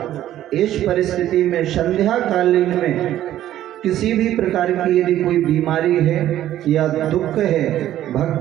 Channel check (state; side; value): quieter; left; 12.6 dB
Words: इस परिस्थिति में संध्या कालीन में किसी भी प्रकार की यदि कोई बीमारी है या दुख है,